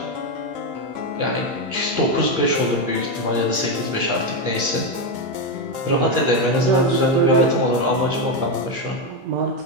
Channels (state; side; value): late; left; 15 ms